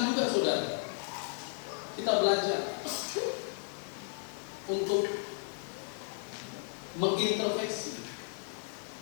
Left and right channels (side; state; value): right; silent; 55 dB below the other